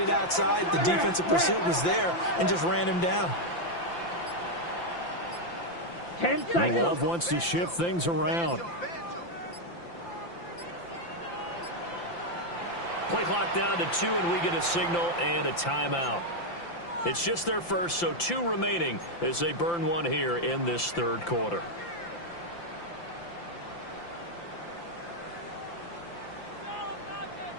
outside, the defensive pursuit was there and just ran him down. 10 seconds. Love wants to shift things around. Play clock down to 2, and we get a signal and a timeout. It's just their first, so 2 remaining as they burn one here in this 3rd quarter.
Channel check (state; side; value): late; right; 5.8 ms